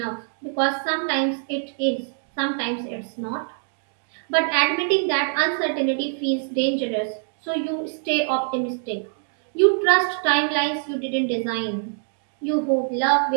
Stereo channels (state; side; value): silent; left; digital silence